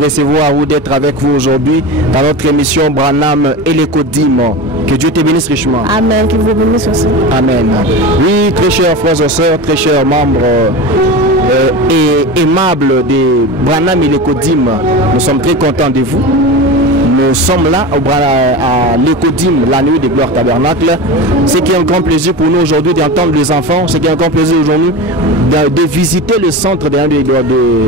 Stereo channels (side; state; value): both; normal; correlation 0.27